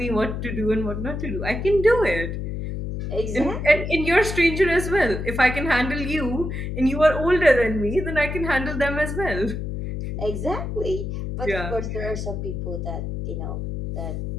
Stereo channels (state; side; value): noise; left; hum, 4 dB below the sound